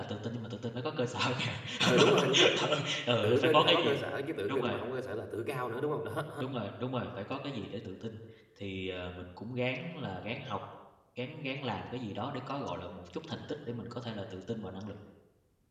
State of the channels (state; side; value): identical; both; correlation 1.00